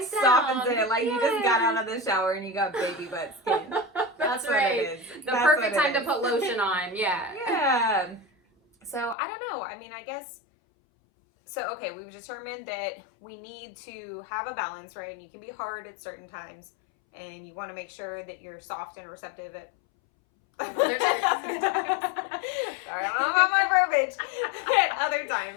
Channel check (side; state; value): right; drops out; at 9.2 s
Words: softens down. it. Like you just got out of the shower and you got baby butt skin. That's right. What it is. The perfect time to put lotion on. Yeah. Yeah. So I don't know. I mean, I guess. So okay, we've determined that we need to have a balance, right? And you can be hard at certain times, and you want to make sure that you're soft and receptive at. Sorry, I don't know about my verbiage. At other